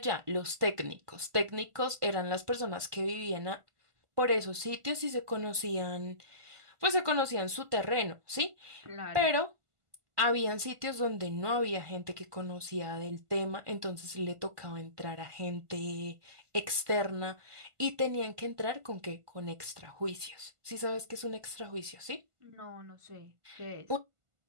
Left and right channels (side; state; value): left; late; 1.5 ms